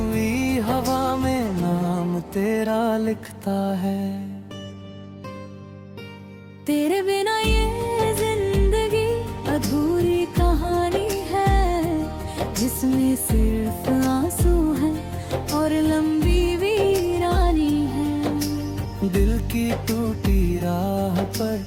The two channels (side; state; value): both; identical; correlation 1.00